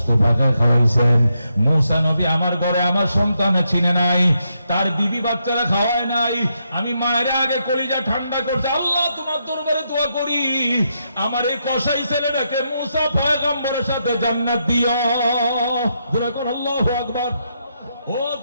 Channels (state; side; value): inverted; both; correlation -0.80